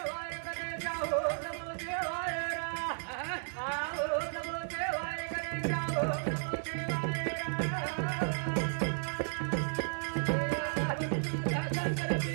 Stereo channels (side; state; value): left; silent; digital silence